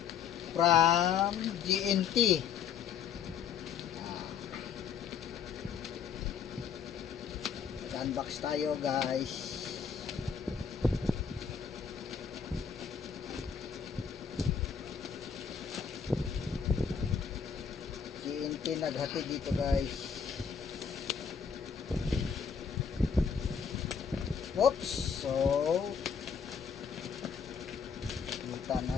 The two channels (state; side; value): quieter; right; 6.9 dB